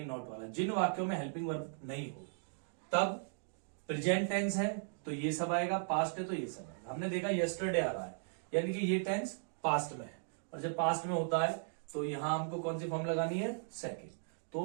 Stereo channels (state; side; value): silent; left; digital silence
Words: नॉट वाला। जिन वाक्यों में हेल्पिंग वर्ब नहीं हो तब प्रेजेंट टेंस है तो ये सब आएगा, पास्ट है तो ये सब आएगा। हमने देखा यस्टरडे आ रहा है, यानी कि ये टेंस पास्ट में है, और जब पास्ट में होता है तो यहां हमको कौन सी फॉर्म लगानी है, सेकंड।